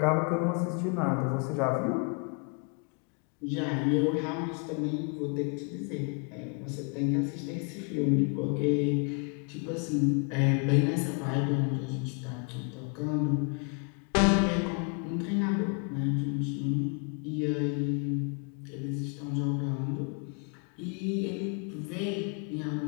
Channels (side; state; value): right; quieter; 36.3 dB